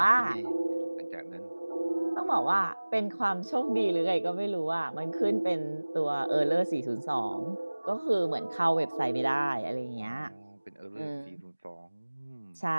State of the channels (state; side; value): inverted; both; correlation -1.00